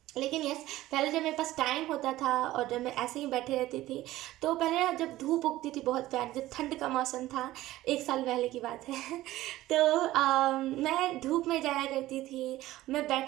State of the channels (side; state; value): left; quieter; 16.0 dB